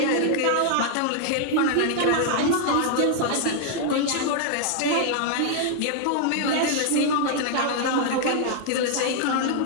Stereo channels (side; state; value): both; different; correlation 0.00